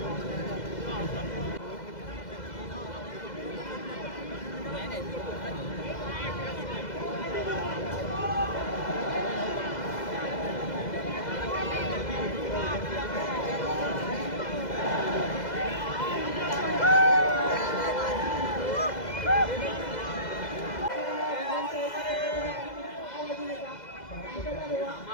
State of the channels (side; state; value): right; late; 2.0 ms